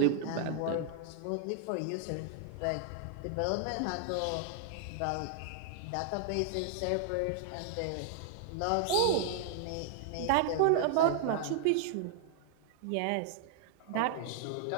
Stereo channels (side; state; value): both; different; correlation 0.00